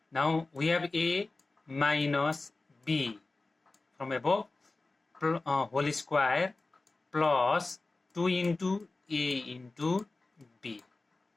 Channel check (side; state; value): right; quieter; 3.3 dB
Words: Now we have a minus b from above whole square plus 2 into a into b.